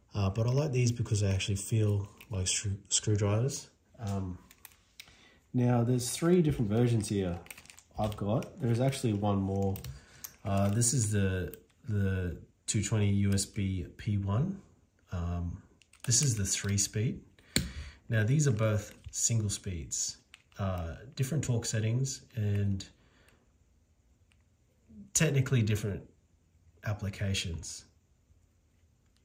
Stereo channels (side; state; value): both; identical; correlation 1.00